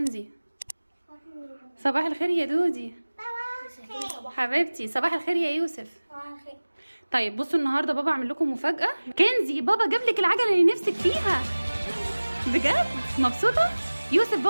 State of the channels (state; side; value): inverted; both; correlation -1.00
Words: صباح الخير يا دودي حبيبتي. صباح الخير يا يوسف. طيب بصوا النهارده بابا عامل لكم مفاجأة. كنزي بابا جاب لك العجلة اللي نفسك فيها. بجد مبسوطة؟ يوسف